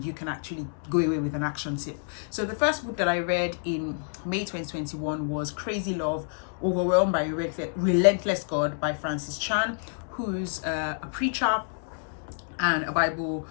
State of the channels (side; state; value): right; silent; digital silence